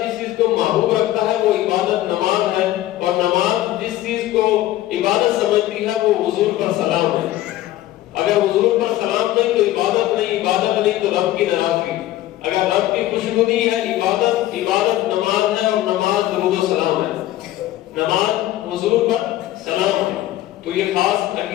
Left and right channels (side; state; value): right; quieter; 14.7 dB